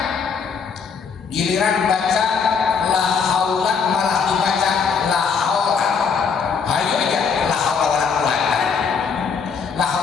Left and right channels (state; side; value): quieter; right; 5.9 dB